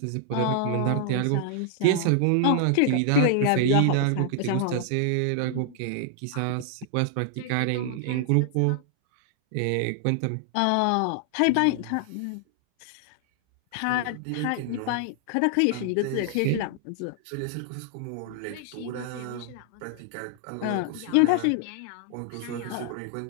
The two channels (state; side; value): different; both; correlation 0.00